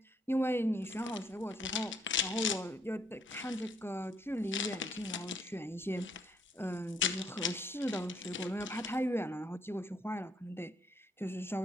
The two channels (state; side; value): normal; both; correlation 0.69